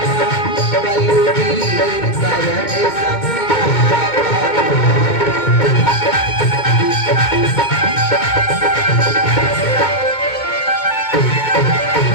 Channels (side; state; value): right; late; 2.2 ms